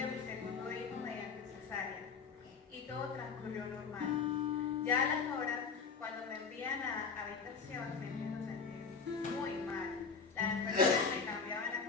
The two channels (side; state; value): right; quieter; 5.3 dB